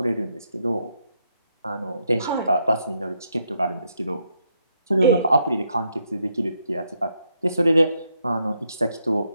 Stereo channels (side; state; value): both; inverted; correlation -0.77